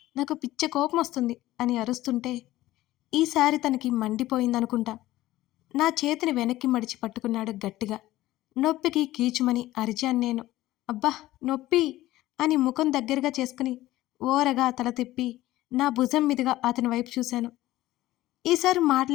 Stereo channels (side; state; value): right; quieter; 16.1 dB